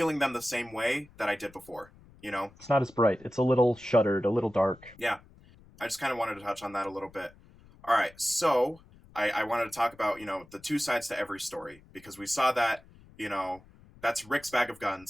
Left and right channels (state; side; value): noise; left; rumble, 25 dB below the sound